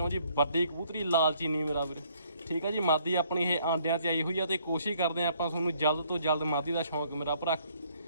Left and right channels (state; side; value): inverted; both; correlation -0.64